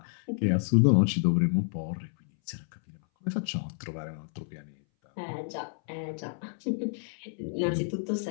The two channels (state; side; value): silent; right; 58 dB below the other